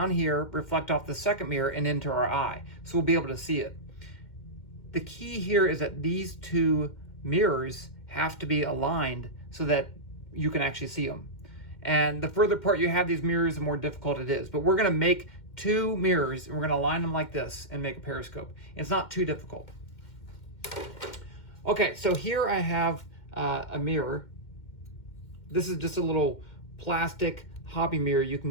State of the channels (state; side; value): late; right; 2.1 ms